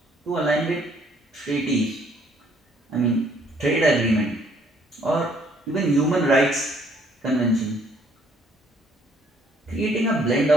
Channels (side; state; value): both; normal; correlation 0.64